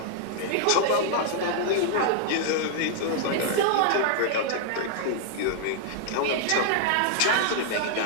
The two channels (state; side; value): different; both; correlation -0.01